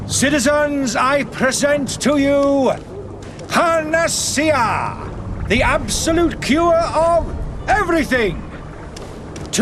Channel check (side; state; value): both; identical; correlation 1.00